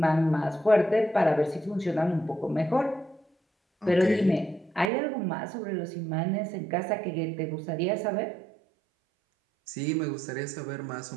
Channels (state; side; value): drops out; left; at 4.9 s